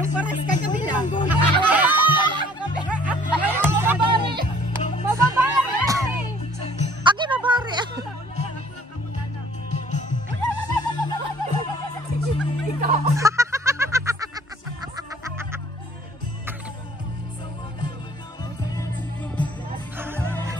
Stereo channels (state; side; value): normal; both; correlation 0.55